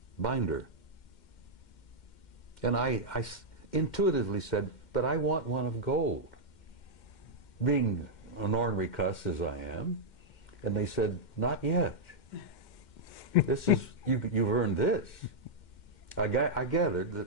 binder. And I intuitively said, "But I want one of gold," being an ornery cuss as I am. And they said, "Not yet. This is, you've earned this." I gathered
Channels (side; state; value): right; late; 2.1 ms